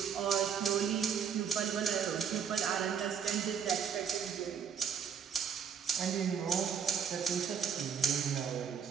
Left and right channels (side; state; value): left; quieter; 7.5 dB